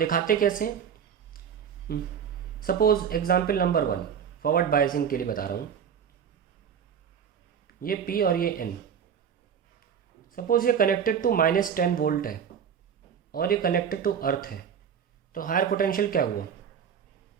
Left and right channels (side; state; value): left; quieter; 7.8 dB